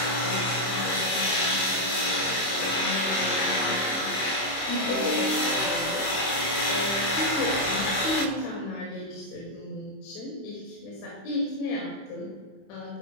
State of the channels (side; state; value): right; late; 26 ms